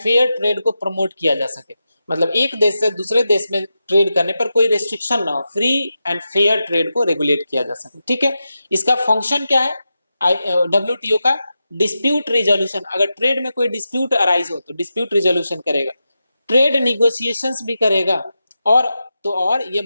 ट्रेड को प्रमोट किया जा सके। मतलब एक देश से दूसरे देश में ट्रेड करने पर कोई रेस्ट्रिक्शन ना हो, फ्री एंड फेयर ट्रेड को रेगुलेट किया जा सके। ठीक है, इसका फंक्शन क्या है WTO का? Dispute resolution. अगर ट्रेड में कोई डिस्प्यूट अराइज हो तो डिस्प्यूट रिजोल्यूशन करेगा, ट्रेड निगोशिएशंस भी करेगा, और ये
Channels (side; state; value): both; inverted; correlation -0.90